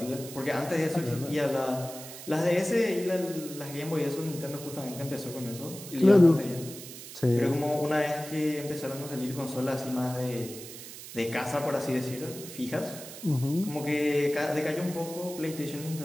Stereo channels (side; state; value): right; noise; hiss, 13 dB below the sound